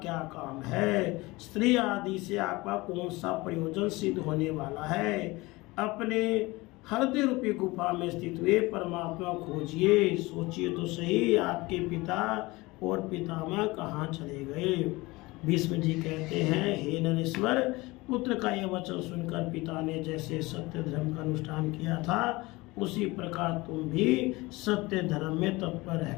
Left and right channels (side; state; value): right; quieter; 22.0 dB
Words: काम है, स्त्री आदि से आपका कौन सा प्रयोजन सिद्ध होने वाला है। अपने हृदय रूपी गुफा में स्थित हुए परमात्मा खोजिए, सोचिए तो सही आपके पिता और पितामह कहाँ चले गए। भीष्म जी कहते हैं, हे नरेश्वर, पुत्र का यह वचन सुनकर पिता ने जैसे सत्य धर्म का अनुष्ठान किया था उसी प्रकार तुम भी सत्य धर्म में तत्पर